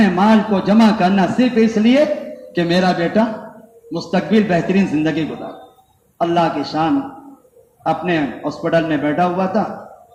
مال کو جمع کرنا صرف اس لیے کہ میرا بیٹا مستقبل بہترین زندگی گزارے. اللہ کی شان. اپنے ہاسپٹل میں بیٹھا ہوا تھا،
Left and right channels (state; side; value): identical; both; correlation 1.00